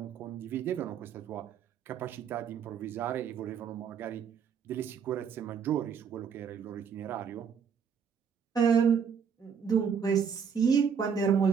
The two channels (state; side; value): quieter; left; 7.0 dB